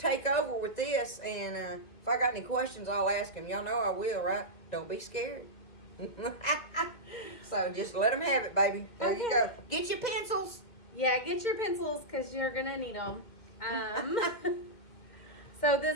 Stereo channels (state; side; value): late; right; 2.1 ms